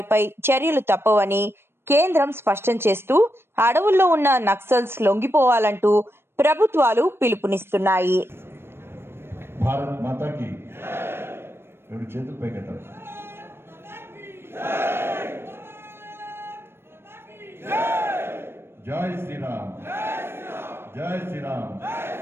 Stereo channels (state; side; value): late; left; 0.12 ms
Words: చర్యలు తప్పవని కేంద్రం స్పష్టం చేస్తూ అడవుల్లో ఉన్న నక్సల్స్ లొంగిపోవాలంటూ ప్రభుత్వాలు పిలుపునిస్తున్నాయి. భారత్ మాతాకి రెండు చేతులు పైకెత్తారు. జై శ్రీరామ్, జై శ్రీరామ్.